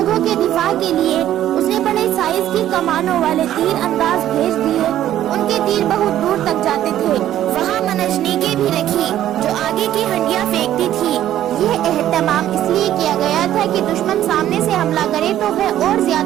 کے دفاع کے لیے اس نے بڑے سائز کی کمانوں والے تیر انداز بھیج دیے۔ ان کے تیر بہت دور تک جاتے تھے۔ وہاں منجنیقیں بھی رکھی جو آگے کی ہنڈیاں پھینکتی تھی۔ یہ اہتمام اس لیے کیا گیا تھا کہ دشمن سامنے سے حملہ کرے تو وہ اور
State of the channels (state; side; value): quieter; left; 12.2 dB